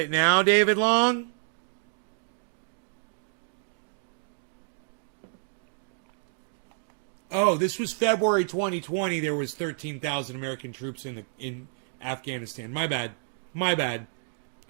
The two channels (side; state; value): left; silent; digital silence